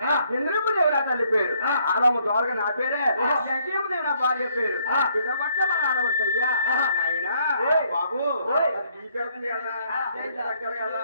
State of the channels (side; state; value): both; inverted; correlation -0.68